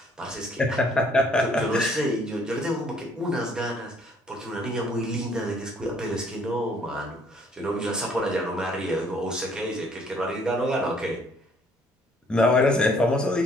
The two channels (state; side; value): normal; both; correlation 0.62